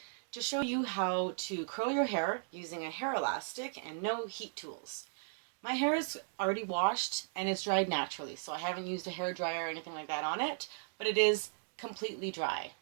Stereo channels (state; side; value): silent; left; digital silence